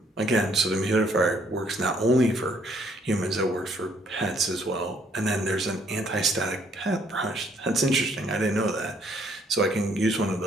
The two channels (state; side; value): normal; both; correlation 0.66